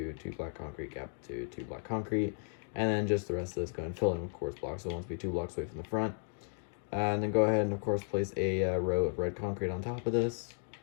2 black concrete, gap of 2, 2 black concrete, and then just the rest of this go and fill in with quartz blocks. So it wants to be 2 blocks away from the front. And then go ahead and of course place a row of red concrete on top of this.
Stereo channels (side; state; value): right; silent; 55 dB below the other